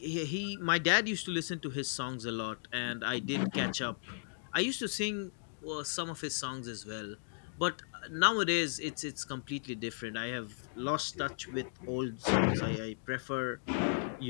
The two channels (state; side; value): silent; right; digital silence